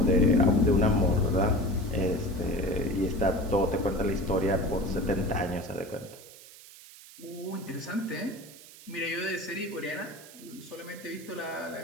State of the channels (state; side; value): noise; right; hiss, 19 dB below the sound